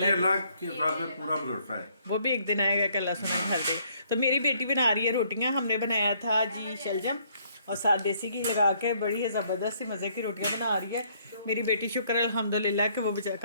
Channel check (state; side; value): inverted; both; correlation -0.66